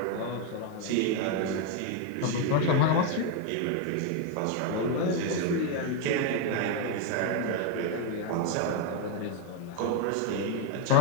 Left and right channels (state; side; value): different; both; correlation 0.01